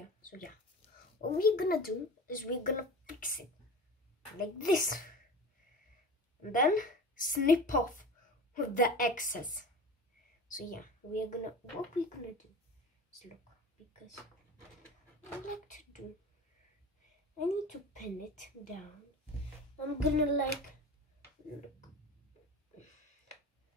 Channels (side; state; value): both; normal; correlation 0.34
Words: So yeah, what we're gonna do is we're gonna fix it like this. And then snip off with the excess. So yeah, what we're gonna do is look, because I like to do, I need to pin it down. I'm gonna like, look,